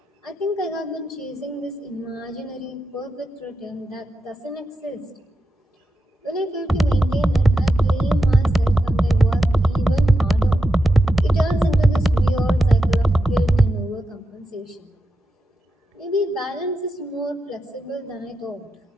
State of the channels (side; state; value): both; normal; correlation 0.88